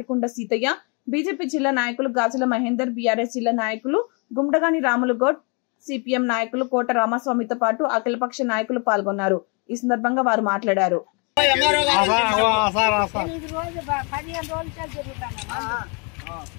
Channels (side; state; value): right; quieter; 33.9 dB